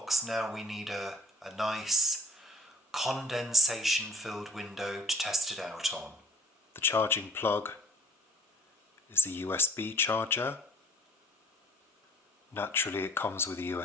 Now we need a nice condensation filled window to test it out on. The charging plug is a USB charger. Naturally it comes with a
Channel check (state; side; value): normal; both; correlation 0.54